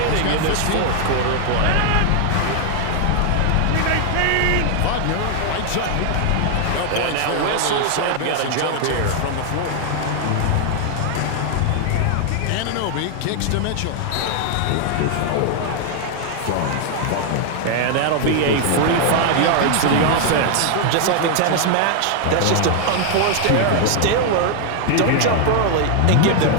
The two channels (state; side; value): different; both; correlation 0.00